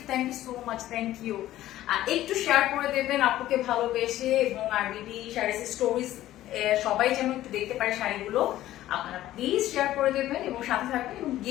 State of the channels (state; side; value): quieter; right; 14.2 dB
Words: so much, thank you. একটু শেয়ার করে দেবেন আপুকে ভালোবেসে, এবং আর বিডি শাড়ির স্টোরিজ সবাই যেন একটু দেখতে পারে শাড়িগুলো। আপনারা প্লিজ শেয়ার করে দেবেন এবং সাথে থাকবেন, এবং